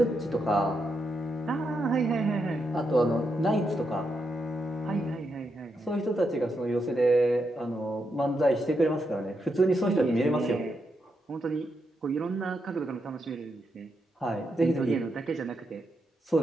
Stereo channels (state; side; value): normal; both; correlation 0.83